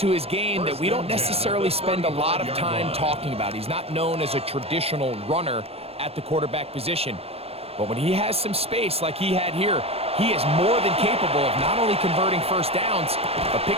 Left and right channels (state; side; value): late; left; 0.29 ms